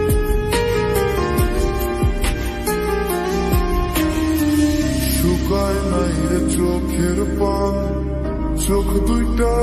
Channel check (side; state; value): both; identical; correlation 1.00